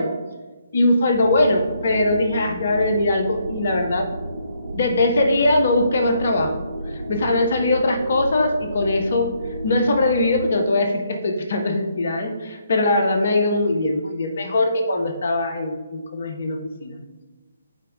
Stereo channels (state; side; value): inverted; both; correlation -0.73